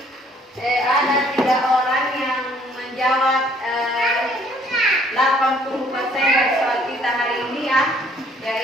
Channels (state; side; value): normal; both; correlation 0.61